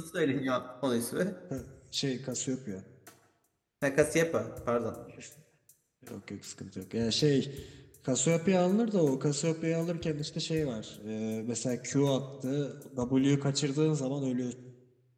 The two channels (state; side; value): identical; both; correlation 1.00